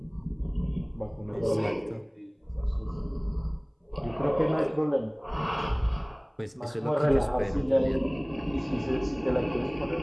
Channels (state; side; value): identical; both; correlation 1.00